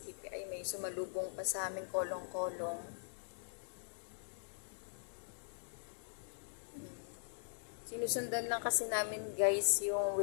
Ay, may sumalubong pa sa amin kolong-kolong. Sinusundan lang kasi namin guys yung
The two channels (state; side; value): silent; right; digital silence